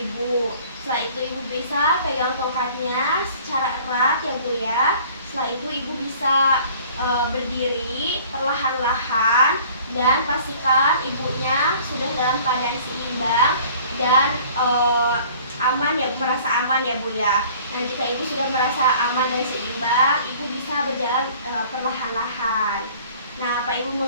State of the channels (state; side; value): inverted; both; correlation -0.51